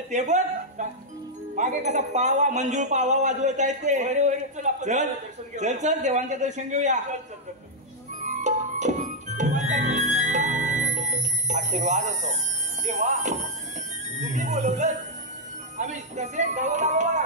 ते बघ मागे कसा पावा मंजूळ पावा वाजवत आहेत ते चल चल चल देवांचे दर्शन घेऊया आशीर्वाद असो देवा तुम्ही बोलवलं आम्ही तसे गावाला बाबा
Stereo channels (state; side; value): normal; both; correlation -0.04